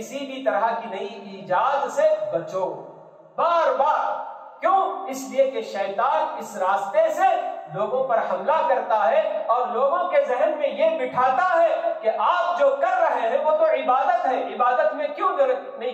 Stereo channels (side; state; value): both; identical; correlation 1.00